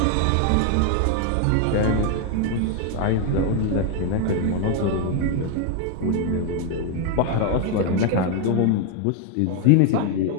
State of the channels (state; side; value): different; both; correlation 0.01